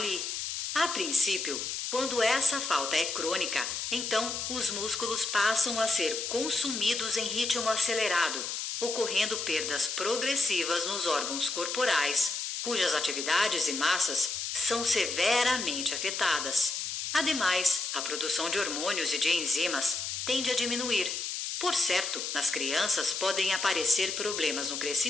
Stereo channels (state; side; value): noise; left; hiss, 4 dB below the sound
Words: A princípio, quando essa falta é crônica, então os músculos passam a ser consumidos em ritmo acelerado, ocorrendo perdas progressivas nos órgãos corporais, cujas atividades e massas são severamente afetadas. Ademais, a produção de hormônios e de enzimas tende a diminuir. Por certo, nas crianças podem aparecer problemas no